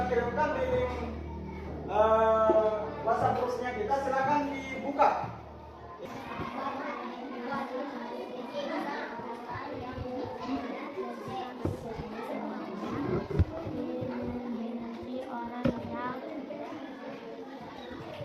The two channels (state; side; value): identical; both; correlation 1.00